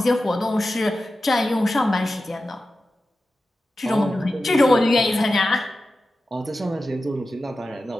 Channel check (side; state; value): both; normal; correlation 0.93